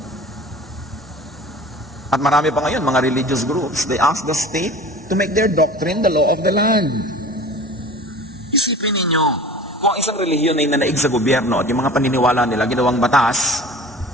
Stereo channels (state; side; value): normal; both; correlation 0.40